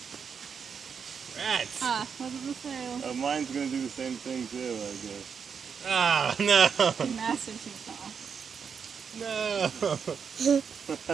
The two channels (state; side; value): quieter; left; 6.5 dB